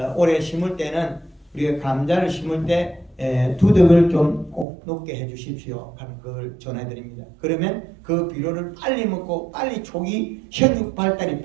올해 심을 때는 우리가 감자를 심을 때 두둑을 좀 꼭 높게 해 주십시오 하는 걸 전해드립니다. 그러면 그 비료를 빨리 먹고 빨리 초기 생육 발달이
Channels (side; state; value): left; drops out; at 4.7 s